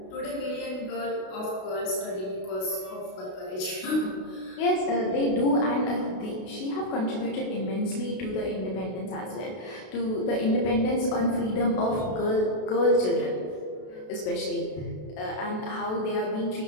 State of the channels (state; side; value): late; right; 32 ms